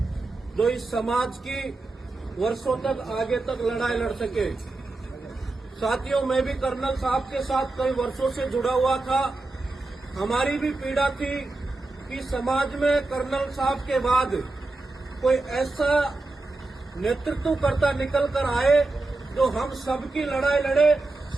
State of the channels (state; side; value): quieter; left; 3.2 dB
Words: जो इस समाज की वर्षों तक आगे तक लड़ाई लड़ सके। साथियों, मैं भी कर्नल साहब के साथ कई वर्षों से जुड़ा हुआ था। हमारी भी पीड़ा थी कि समाज में कर्नल साहब के बाद कोई ऐसा नेतृत्वकर्ता निकल कर आए जो हम सबकी लड़ाई लड़े,